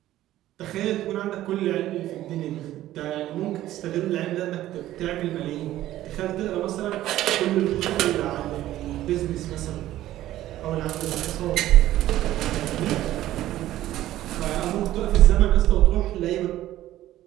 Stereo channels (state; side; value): quieter; left; 14.1 dB